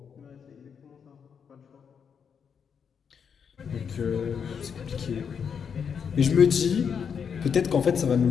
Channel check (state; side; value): quieter; right; 6.9 dB